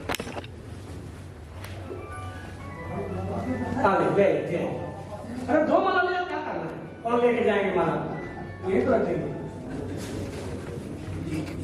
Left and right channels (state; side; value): identical; both; correlation 1.00